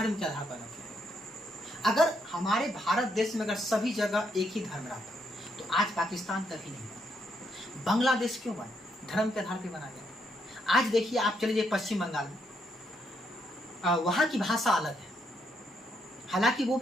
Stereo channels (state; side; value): normal; both; correlation 0.77